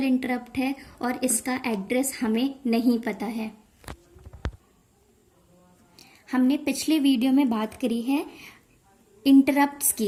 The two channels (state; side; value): identical; both; correlation 1.00